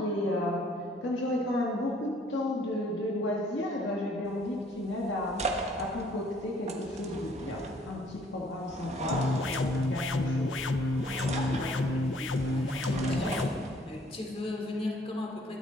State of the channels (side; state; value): both; normal; correlation 0.60